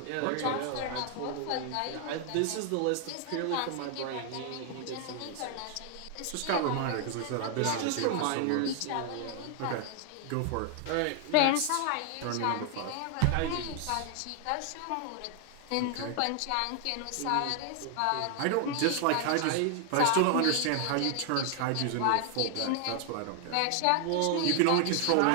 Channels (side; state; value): both; different; correlation 0.00